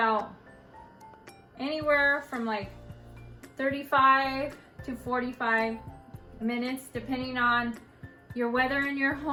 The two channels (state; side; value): identical; both; correlation 1.00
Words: anywhere from like 35 to 45 minutes, depending on your weather in your